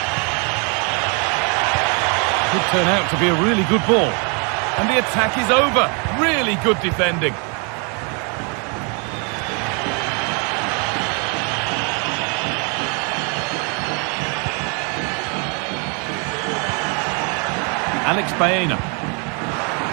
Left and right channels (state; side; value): quieter; left; 35.6 dB